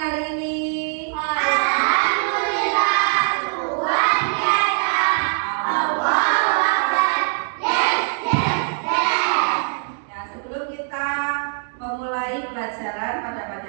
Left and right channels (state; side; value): silent; left; digital silence